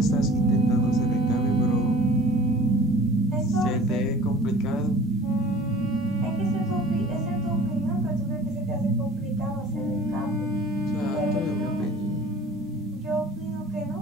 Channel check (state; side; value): normal; both; correlation 0.45